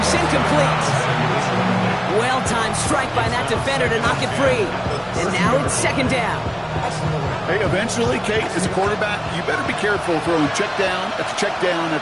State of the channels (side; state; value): both; identical; correlation 1.00